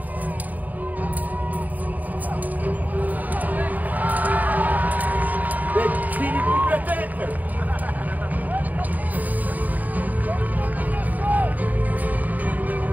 Mais qui lui coupe la tête?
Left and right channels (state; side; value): late; left; 0.080 ms